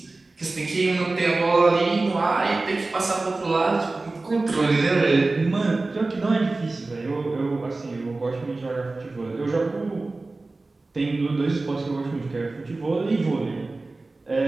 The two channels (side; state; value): left; quieter; 3.3 dB